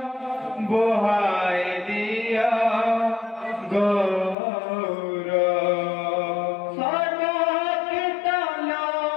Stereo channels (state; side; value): drops out; right; at 4.4 s